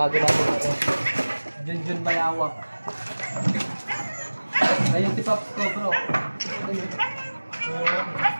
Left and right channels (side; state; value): both; inverted; correlation -1.00